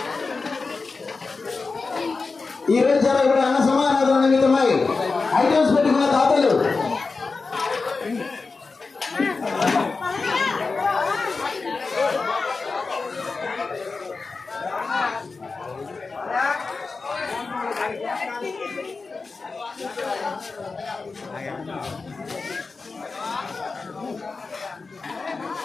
ఈ రోజు జరగబడే అన్న సమారాధన నిమిత్తమై ఐటమ్స్ పెట్టుకున్న దాతలు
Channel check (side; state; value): right; quieter; 4.2 dB